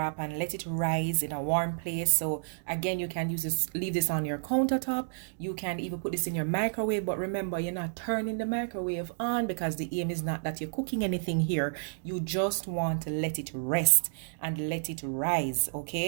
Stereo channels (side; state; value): left; silent; digital silence